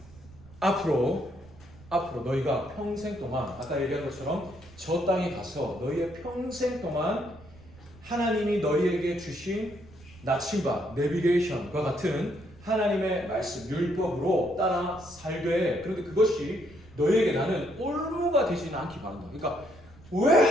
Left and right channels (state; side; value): noise; right; rumble, 22 dB below the sound